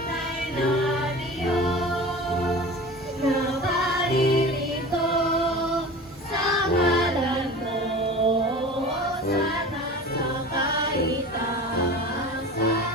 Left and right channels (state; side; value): normal; both; correlation 0.36